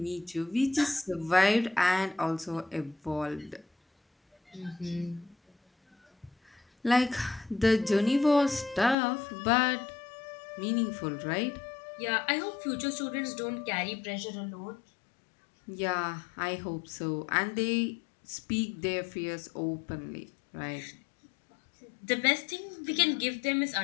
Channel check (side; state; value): right; drops out; at 9.0 s